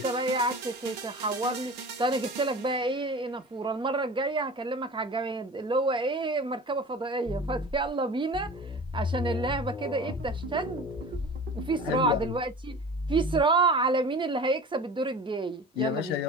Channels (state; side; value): normal; both; correlation 0.38